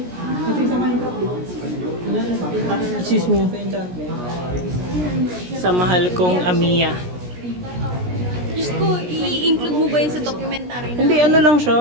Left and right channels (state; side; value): late; left; 17 ms